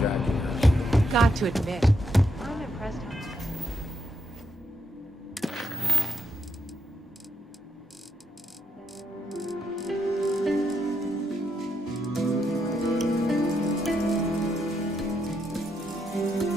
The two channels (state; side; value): normal; both; correlation 0.80